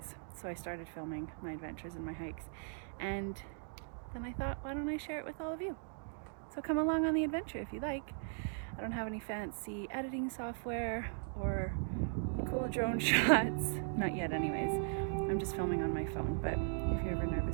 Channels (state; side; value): silent; left; digital silence